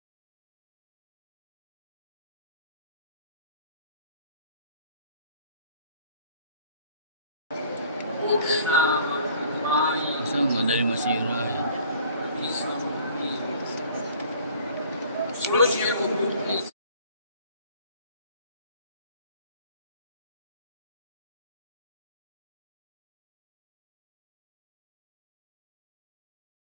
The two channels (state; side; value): inverted; both; correlation -0.53